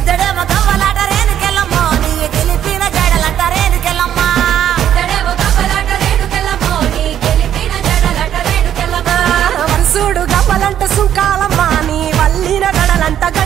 గవ్వలాట రేణుకెళ్ళమ్మ నీ గెలిపిన జడలంట రేణుకెళ్ళమ్మ వరుసుడు గవ్వలంట సుంకాలమ్మ నీ వల్లిన గడలంట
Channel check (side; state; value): left; quieter; 10.3 dB